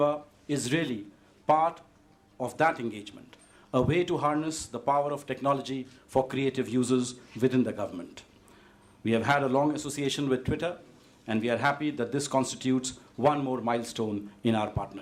is really part of that engagement, a way to harness the power of technology for creative users within the government. We have had a long association with Twitter, and we are happy that this constitutes one more milestone in our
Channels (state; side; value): identical; both; correlation 1.00